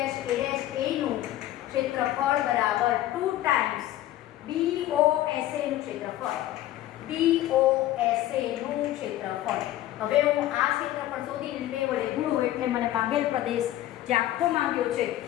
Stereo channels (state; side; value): quieter; right; 14.1 dB